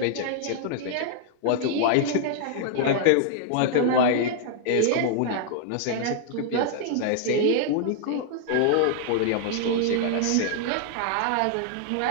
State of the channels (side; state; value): both; different; correlation -0.01